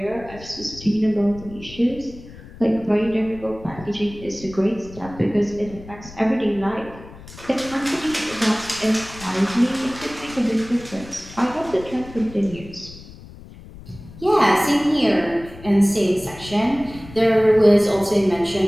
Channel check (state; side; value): noise; left; rumble, 17 dB below the sound